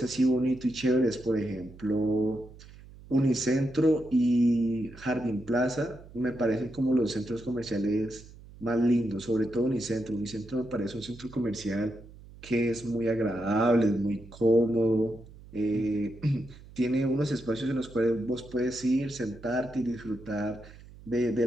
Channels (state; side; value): noise; right; hum, 20 dB below the sound